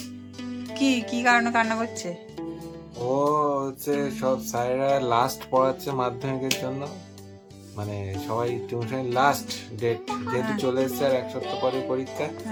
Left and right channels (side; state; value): both; identical; correlation 1.00